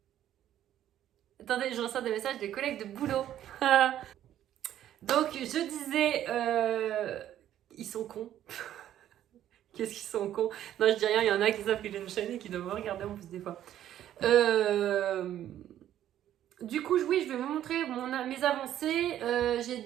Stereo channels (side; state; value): left; quieter; 11.6 dB